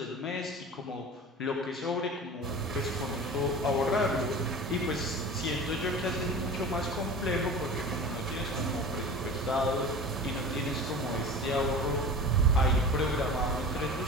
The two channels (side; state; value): both; normal; correlation 0.36